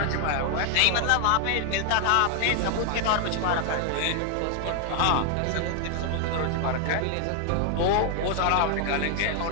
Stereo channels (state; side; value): different; both; correlation 0.00